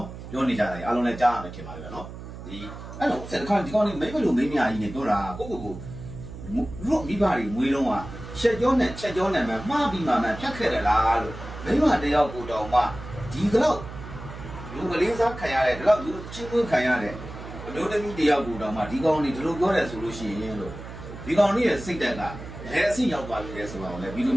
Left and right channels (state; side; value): noise; right; hum, 12 dB below the sound